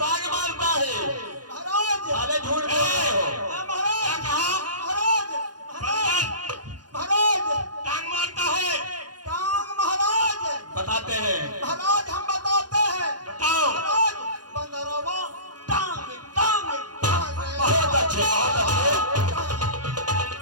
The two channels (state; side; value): late; left; 0.69 ms